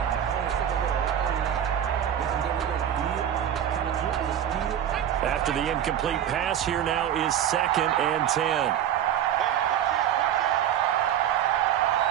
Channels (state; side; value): quieter; left; 10.2 dB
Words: After the incomplete pass, here now is 2nd and 10.